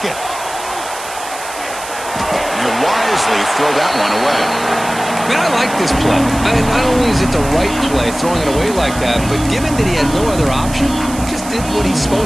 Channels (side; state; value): right; noise; hiss, 12 dB below the sound